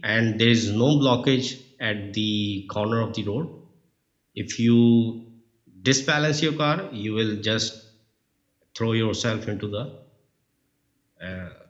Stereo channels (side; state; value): both; identical; correlation 1.00